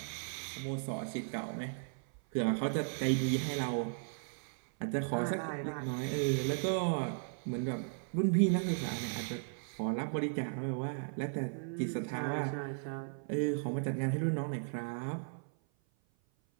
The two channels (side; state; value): left; silent; 54 dB below the other